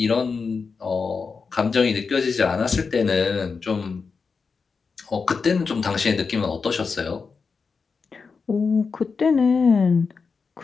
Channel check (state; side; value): quieter; right; 5.0 dB